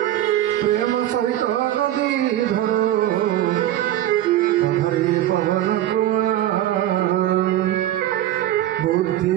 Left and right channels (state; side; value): quieter; left; 13.2 dB